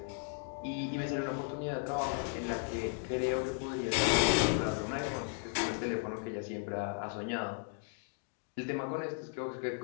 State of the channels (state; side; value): silent; right; 54 dB below the other